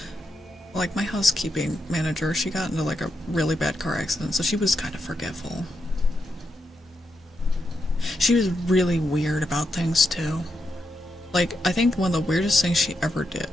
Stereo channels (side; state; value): both; normal; correlation 0.83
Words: Like my housekeeping manager, she got into like a really bad car accident, so she was kind of forgetful. She was really weird about things too. Like, I think one of the weirdest things she ever